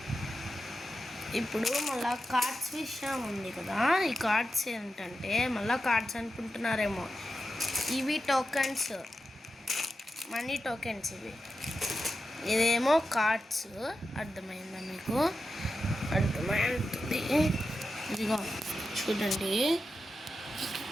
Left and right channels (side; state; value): both; normal; correlation 0.90